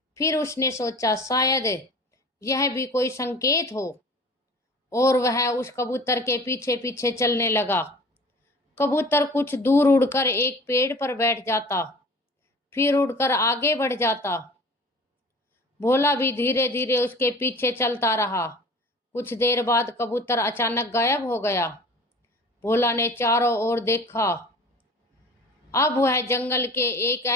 फिर उसने सोचा शायद यह भी कोई संकेत हो, और वह उस कबूतर के पीछे पीछे चलने लगा। कबूतर कुछ दूर उड़कर एक पेड़ पर बैठ जाता, फिर उड़कर आगे बढ़ जाता। भोला भी धीरे धीरे उसके पीछे चलता रहा। कुछ देर बाद कबूतर अचानक गायब हो गया। भोला ने चारों ओर देखा। अब वह जंगल के एक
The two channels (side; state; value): both; normal; correlation 0.43